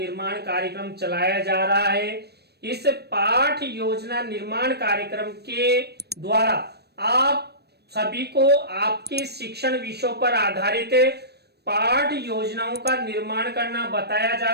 कार्यक्रम चलाया जा रहा है। इस पाठ योजना निर्माण कार्यक्रम के द्वारा आप सभी को आपके शिक्षण विषयों पर आधारित पाठ योजनाओं का निर्माण करना बताया जा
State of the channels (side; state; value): left; late; 0.47 ms